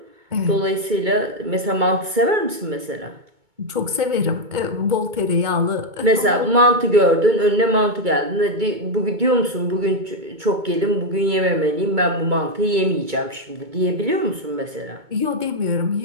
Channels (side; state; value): left; late; 2.2 ms